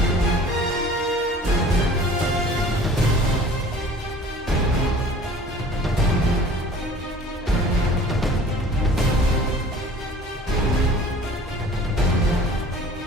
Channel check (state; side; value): normal; both; correlation 0.47